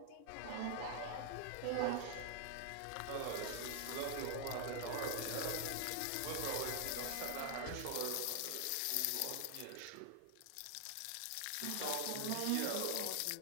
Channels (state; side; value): different; both; correlation 0.00